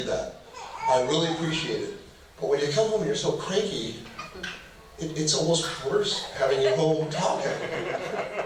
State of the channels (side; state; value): both; identical; correlation 1.00